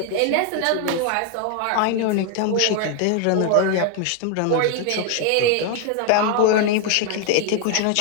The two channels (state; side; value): different; both; correlation 0.00